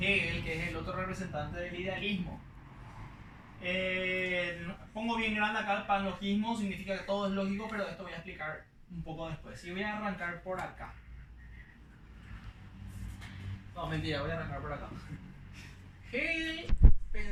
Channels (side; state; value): both; identical; correlation 1.00